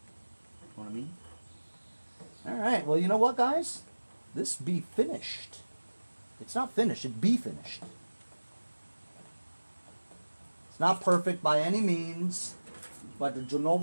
You know what I mean? Alright, well, you know what, guys? This be finished. It's not finished, it be finished. It's not perfect by any means, but you know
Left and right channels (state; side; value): inverted; both; correlation -1.00